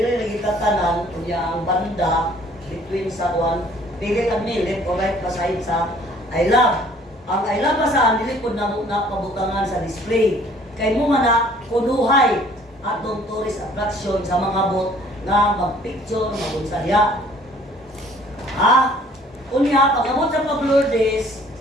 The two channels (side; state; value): both; normal; correlation 0.56